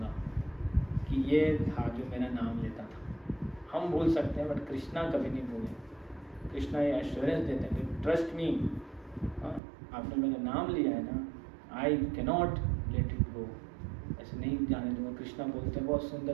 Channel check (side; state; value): left; drops out; at 9.6 s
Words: कि ये था जो मेरा नाम लेता था. हम भूल सकते हैं, बट कृष्णा कभी नहीं भूले. कृष्णा ये एश्योरेंस देते हैं कि ट्रस्ट मी, आपने मेरा नाम लिया है ना, I cannot let it go, ऐसे नहीं जाने दूंगा. कृष्णा बोलते हैं बहुत